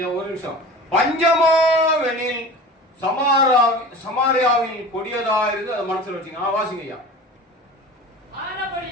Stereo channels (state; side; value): normal; both; correlation 0.37